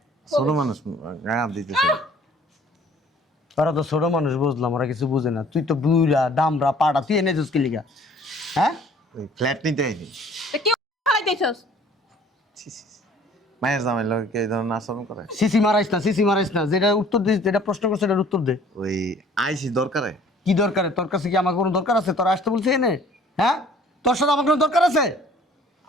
ছোট মানুষ গায়ে হাত দিতেছে ওরা তো ছোট মানুষ, বুঝলাম, ওরা কিছু বুঝে না। তুই তো বুড়া দামরা পাড়া, তুই এনে যাস কি লিগা? হ্যাঁ ওই ফ্ল্যাট নিতে আইনি তা কি খাইতেছস? মায়ের জামাই লোকে এই ধরনের আচরণ করে। সিসি মারাইস না, সিসি মারাইস না। যেটা উত্তর দিস, যেটা প্রশ্ন করছে এটার উত্তর দে। ওই আইসি দরকারে কি দরকার? তোর কাছে কি আমার কোনো দরকার আছে? তোর আসতে বলছে এনে? হ্যাঁ, তোর সাথে আমার কোনো দরকার আছে?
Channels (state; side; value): normal; both; correlation 0.54